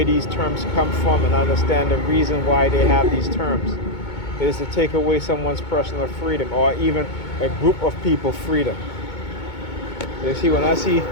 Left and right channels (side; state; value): right; late; 2.2 ms